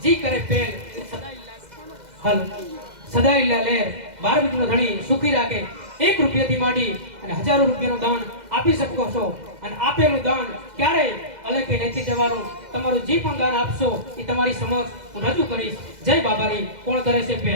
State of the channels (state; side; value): late; left; 2.0 ms